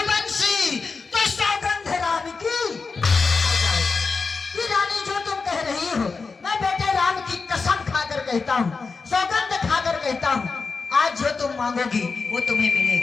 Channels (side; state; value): right; quieter; 4.6 dB